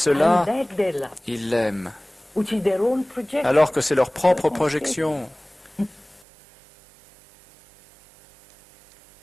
ils l'aiment. Alors que c'est leur propre projection.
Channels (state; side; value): drops out; left; at 6.2 s